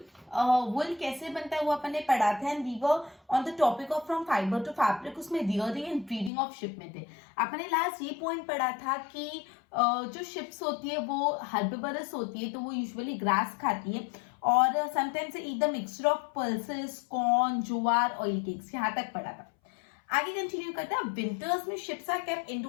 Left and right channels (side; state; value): right; drops out; at 6.3 s